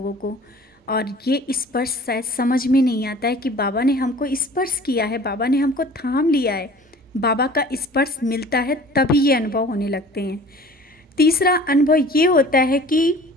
को। और ये स्पर्श शायद समझ में नहीं आता है कि बाबा ने हमको स्पर्श किया है, बाबा ने हमको थाम लिया है। बाबा का स्पर्श मिलता है तभी ये अनुभव होने लगते हैं। तीसरा अनुभव ये होता है कि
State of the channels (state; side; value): normal; both; correlation 0.46